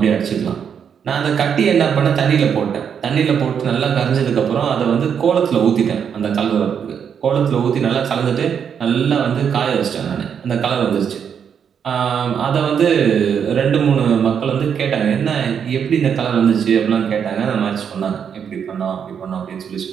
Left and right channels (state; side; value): quieter; left; 7.6 dB